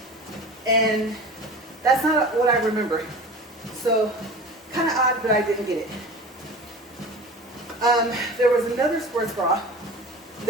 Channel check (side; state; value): both; normal; correlation 0.36